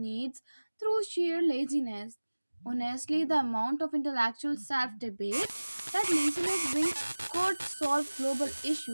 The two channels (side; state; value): both; inverted; correlation -1.00